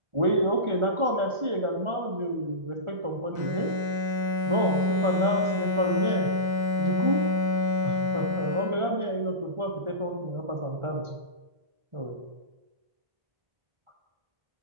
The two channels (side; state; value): left; late; 1.4 ms